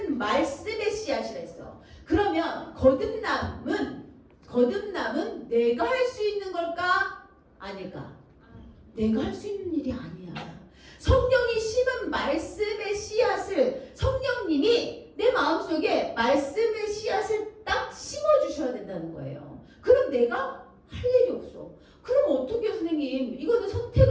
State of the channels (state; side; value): identical; both; correlation 1.00